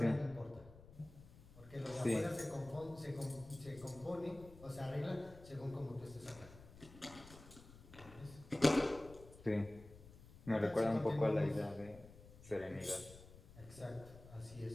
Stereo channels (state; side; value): noise; left; rumble, 18 dB below the sound